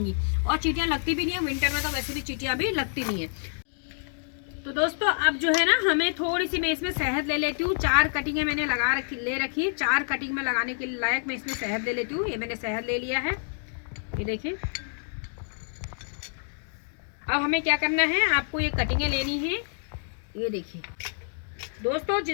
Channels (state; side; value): silent; right; digital silence